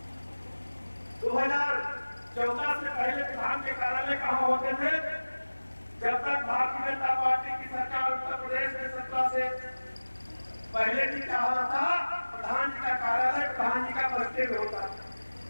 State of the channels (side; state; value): both; inverted; correlation -1.00